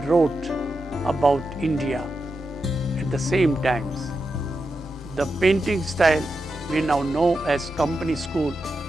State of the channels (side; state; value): both; normal; correlation 0.88